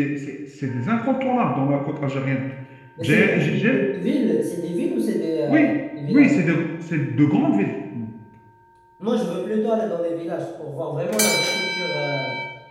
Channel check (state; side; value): identical; both; correlation 1.00